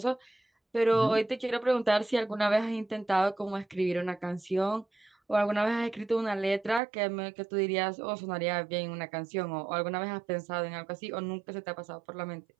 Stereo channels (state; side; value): drops out; left; at 6.8 s